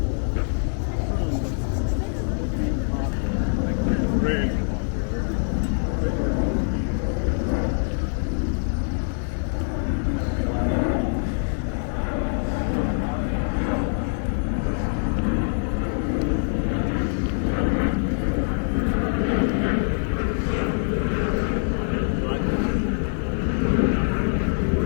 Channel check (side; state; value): right; silent; 62 dB below the other